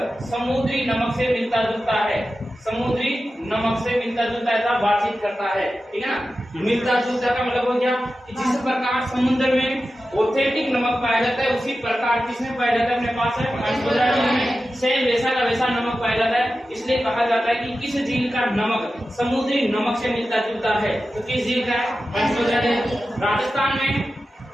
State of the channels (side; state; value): both; normal; correlation 0.93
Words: समुद्री नमक से मिलता जुलता है, समुद्री नमक से मिलता जुलता ऐसा बातचीत करता है, ठीक है ना। मिलता जुलता का मतलब हो गया कि जिस प्रकार समुद्र में ऑथेंटिक नमक पाया जाता है, उसी प्रकार किसमें पाया जाता है? अपने पास है पंचभद्रा झील में सेम वैसा का वैसा नमक पाया जाता है। इसलिए कहा जाता है कि किस झील का नमक समुद्री नमक से मिलता जुलता है। तो किस झील का है? पंचभद्रा झील। राजस्थान में